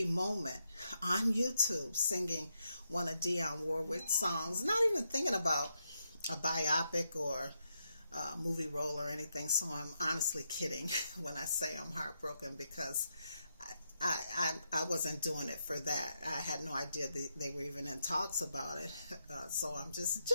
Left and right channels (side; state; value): both; inverted; correlation -0.82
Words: moment on YouTube, singing one of Dionne Warwick's songs, not even thinking about a biopic or movie role or anything. So I'm honestly kidding when I say I'm heartbroken, because I wasn't doing it for that. I had no idea they were even in talks about it. So I'm just